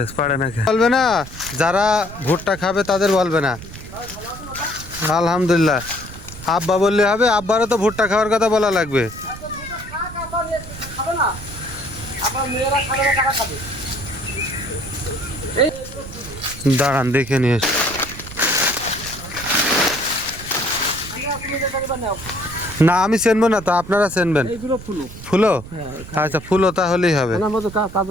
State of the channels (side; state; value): right; noise; rumble, 14 dB below the sound